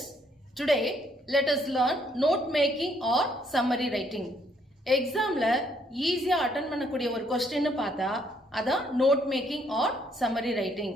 today let us learn note making or summary writing. Examல ஈஸியா attend பண்ணக்கூடிய ஒரு question பார்த்தா அதான் note making or summary writing.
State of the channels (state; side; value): normal; both; correlation 0.69